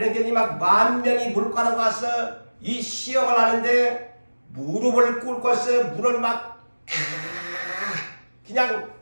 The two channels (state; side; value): inverted; both; correlation -1.00